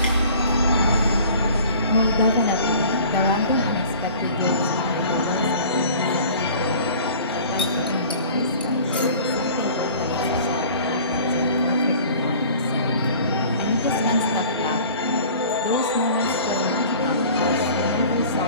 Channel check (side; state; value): both; inverted; correlation -0.46